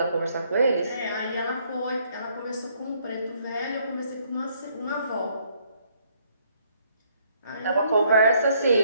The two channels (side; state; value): both; inverted; correlation -0.68